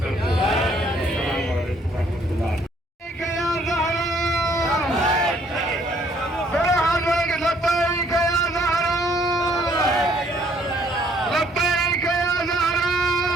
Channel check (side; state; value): both; normal; correlation 0.64